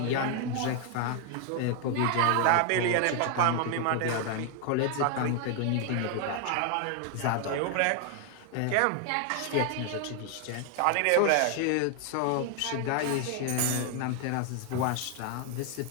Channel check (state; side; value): different; both; correlation 0.00